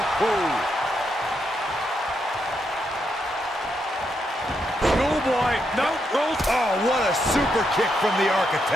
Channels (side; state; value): both; normal; correlation 0.80